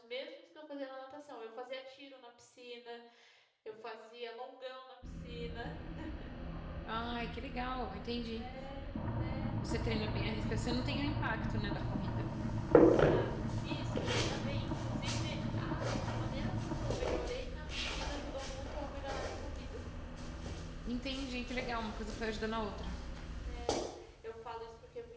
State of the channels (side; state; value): both; identical; correlation 1.00